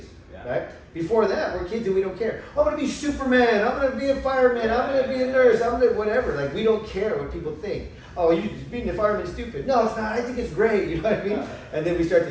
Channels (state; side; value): identical; both; correlation 1.00